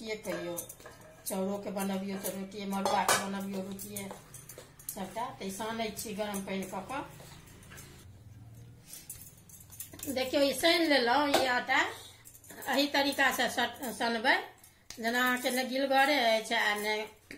कहियो, चाउरो के बनबियो तो रोटिए, मड़ुआ के बनबियो रोटिए सबटा। तो सानै छी गरम पानी कऽ कऽ। देखियो ई सान लेलहुँ। ई आटा एही तरीका से सनबै जेना अहाँके ने गिलगरे अछि आ ने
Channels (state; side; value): identical; both; correlation 1.00